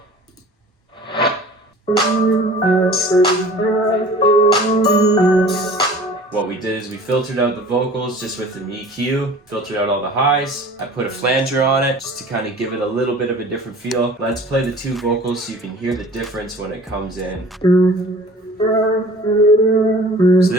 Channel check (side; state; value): both; normal; correlation 0.45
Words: What we did is we filtered out the vocals just with an EQ, filtered out all the highs. I put a flanger on it just to kind of give it a little bit of a different feel. Let's play the 2 vocals so you can hear the difference when it comes in. So